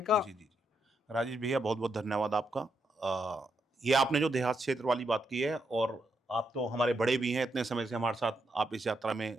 का। जी जी जी राजेश भैया, बहुत बहुत धन्यवाद आपका। ये आपने जो देहात क्षेत्र वाली बात की है, और आप तो हमारे बड़े भी हैं, इतने समय से हमारे साथ आप इस यात्रा में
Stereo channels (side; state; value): both; normal; correlation 0.81